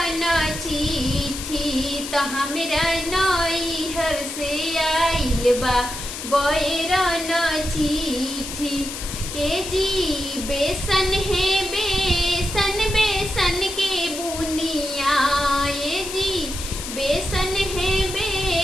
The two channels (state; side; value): noise; left; hiss, 8 dB below the sound